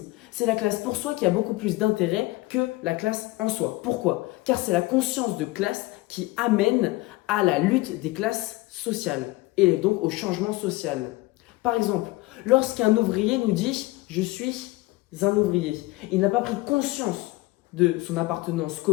c'est la classe pour soi qui a beaucoup plus d'intérêt que la classe en soi. Pourquoi? Car c'est la conscience de classe qui amène à la lutte des classes sociales et donc au changement social. Par exemple, lorsqu'un ouvrier nous dit « je suis un ouvrier », il n'a pas pris conscience de son appartenance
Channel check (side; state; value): right; quieter; 20.5 dB